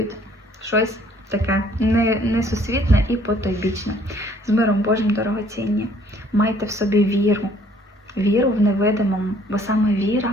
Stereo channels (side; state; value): both; normal; correlation 0.60